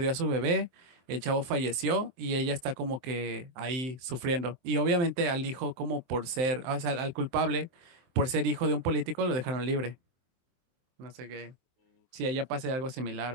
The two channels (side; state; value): left; late; 23 ms